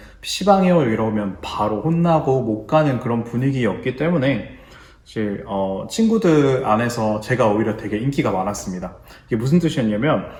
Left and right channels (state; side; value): identical; both; correlation 1.00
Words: PC방이요 이러면 바로 혼나고 못 가는 그런 분위기였기 때문에 사실 친구들 안에서 제가 오히려 되게 인기가 많았습니다. 이게 무슨 뜻이었냐면